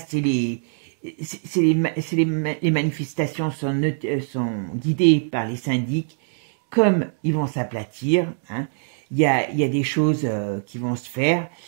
les manifestations sont guidées par les syndics, comme ils vont s'aplatir, hein, il y a des choses qui vont se faire,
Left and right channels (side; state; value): left; silent; digital silence